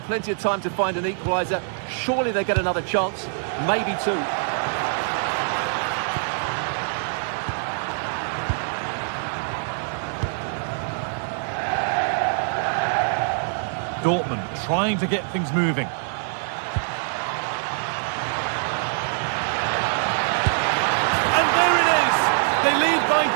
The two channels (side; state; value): left; silent; digital silence